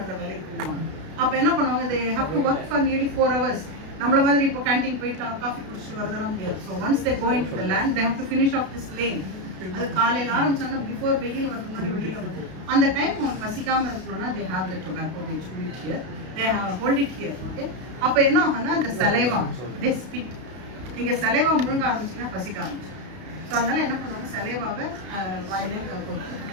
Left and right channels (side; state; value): left; late; 32 ms